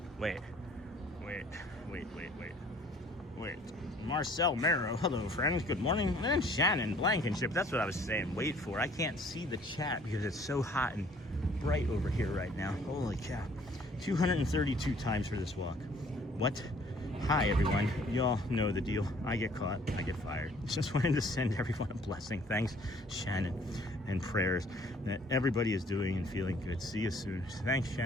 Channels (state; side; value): normal; both; correlation 0.57